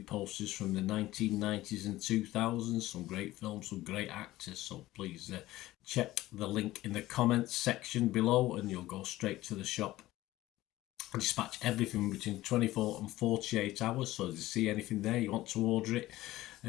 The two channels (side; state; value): right; quieter; 16.6 dB